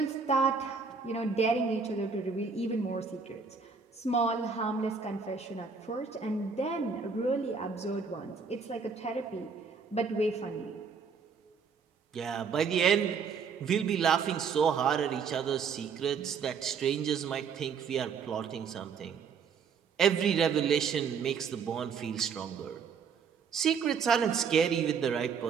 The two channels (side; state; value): left; quieter; 5.8 dB